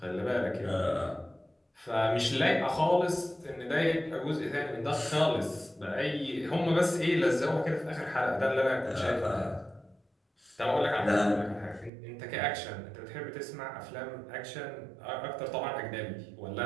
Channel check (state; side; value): drops out; left; at 11.9 s